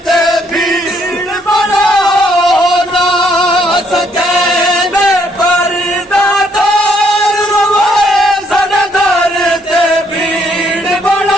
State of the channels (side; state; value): both; normal; correlation 0.69